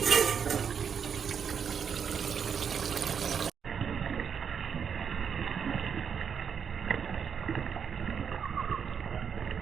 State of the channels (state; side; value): quieter; left; 7.1 dB